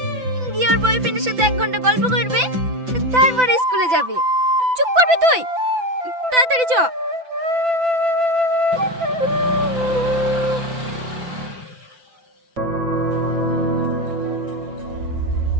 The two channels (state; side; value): late; left; 5.9 ms